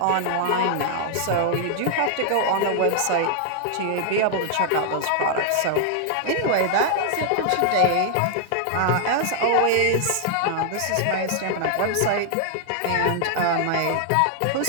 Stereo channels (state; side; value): different; both; correlation 0.00